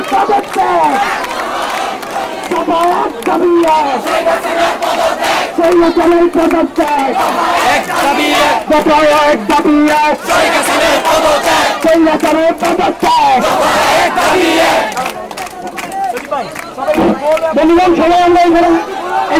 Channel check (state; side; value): identical; both; correlation 1.00